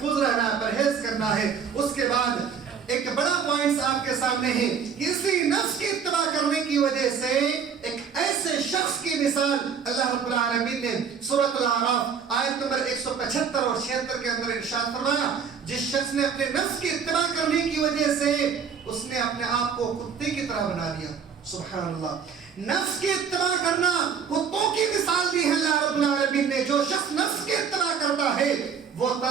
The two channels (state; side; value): quieter; left; 6.9 dB